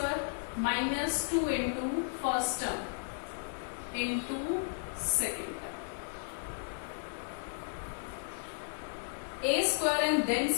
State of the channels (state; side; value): silent; right; digital silence